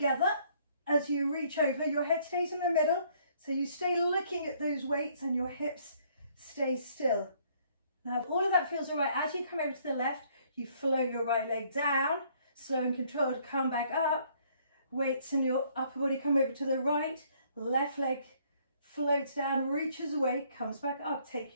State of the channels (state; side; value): inverted; both; correlation -0.64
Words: as you reach over. Your head stays in the middle, so you stay looking at those weights and your hips stay still. Now, if all of that feels all right, as you come over to the left, you flow your right leg down, slow and controlled, come back up. Weights in your upper body come over to the right. Left leg floats down, reaches away, comes back up. Take